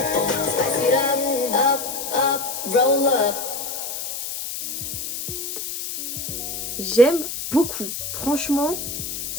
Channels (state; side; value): noise; left; hiss, 5 dB below the sound